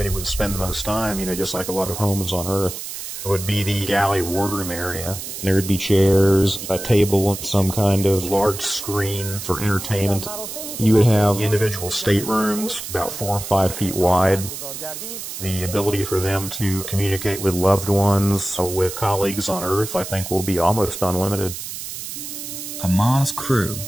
would spend the most time, just like a lot of homes on Earth, would be the galley wardroom area. There would be chairs, a table, some kind of large screen for entertainment. You would have individual staterooms, about 4 or 5 feet wide. The ability for them to communicate with loved ones, with colleagues on Earth, I think will be almost unlimited. A Mars crew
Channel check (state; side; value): noise; right; hiss, 8 dB below the sound